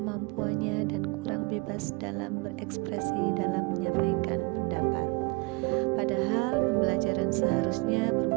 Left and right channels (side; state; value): left; quieter; 27.5 dB